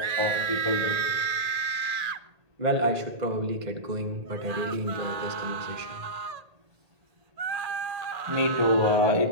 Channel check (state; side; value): late; left; 1.8 ms